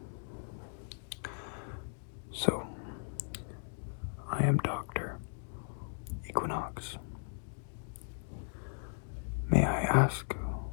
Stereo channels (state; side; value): silent; right; digital silence